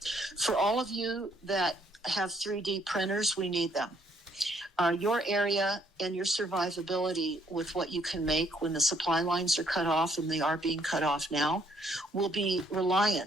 For all of you that have 3D printers, we need them. Your area and your survivability with what you can make when the supply lines are cut off, and they are being cut off now, will be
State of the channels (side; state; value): both; normal; correlation 0.67